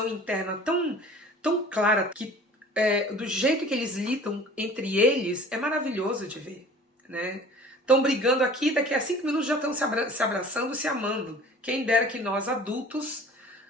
interna tão clara, que do jeito que eles lidam entre eles é maravilhoso de ver, né? Estão brigando aqui, daqui a 5 minutos já estão se abraçando, se amando. Quem dera que nós, adultos,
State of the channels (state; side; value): normal; both; correlation 0.46